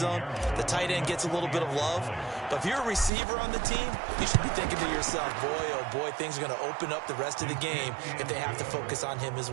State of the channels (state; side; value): drops out; left; at 3.1 s